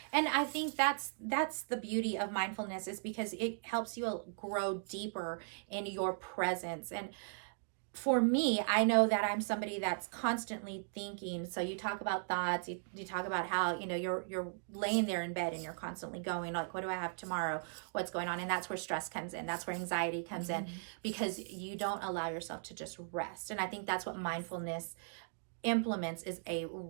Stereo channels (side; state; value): left; silent; digital silence